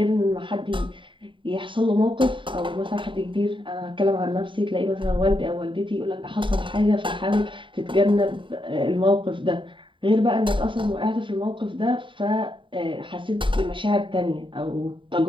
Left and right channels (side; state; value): left; late; 0.24 ms